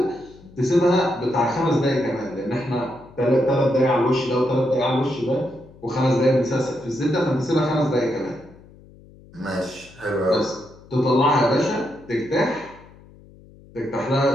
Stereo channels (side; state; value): left; noise; hum, 23 dB below the sound